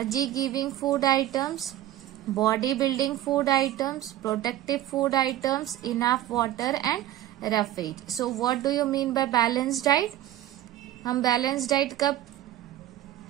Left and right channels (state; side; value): quieter; left; 13.4 dB